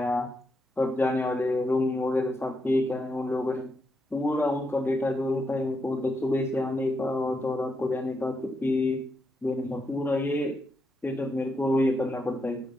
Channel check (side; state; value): both; normal; correlation 0.83